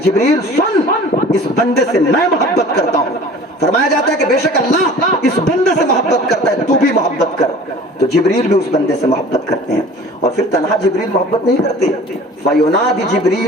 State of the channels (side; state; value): both; normal; correlation 0.44